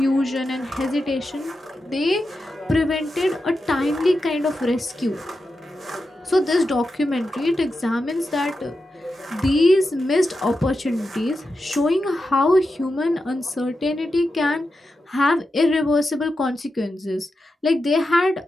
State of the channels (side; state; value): both; normal; correlation 0.89